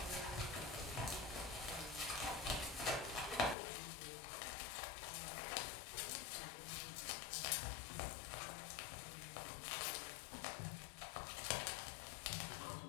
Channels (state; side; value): drops out; right; at 3.6 s